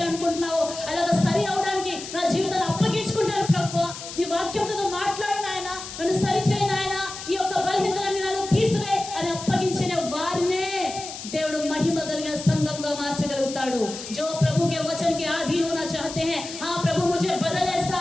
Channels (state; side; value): noise; left; hiss, 10 dB below the sound